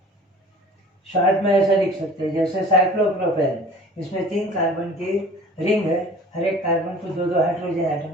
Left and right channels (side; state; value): both; normal; correlation 0.45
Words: शॉर्ट में ऐसा लिख सकते हैं, जैसे साइक्लोप्रोपेन, इसमें 3 कार्बन की रिंग है, हर एक कार्बन को 2-2 हाइड्रोजन